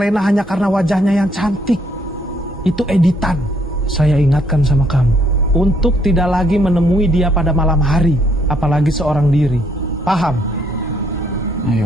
hanya karena wajahnya yang cantik. Itu editan. Saya ingatkan sama kamu. Untuk tidak lagi menemui dia pada malam hari. Apalagi seorang diri. Paham?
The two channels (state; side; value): normal; both; correlation 0.69